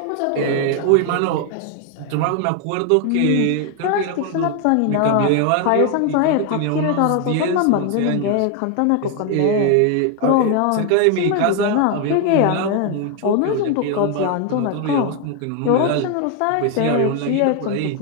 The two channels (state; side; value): different; both; correlation 0.01